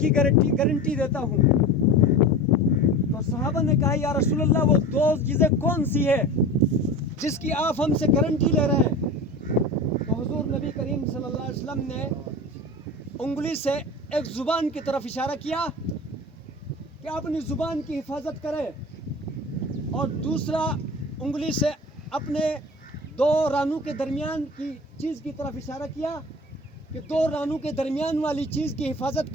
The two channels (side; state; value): both; normal; correlation 0.34